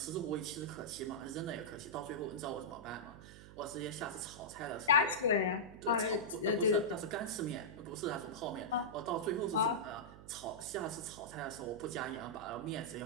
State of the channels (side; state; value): right; noise; hum, 16 dB below the sound